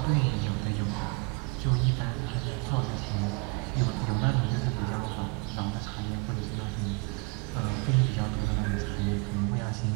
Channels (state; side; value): quieter; left; 30.7 dB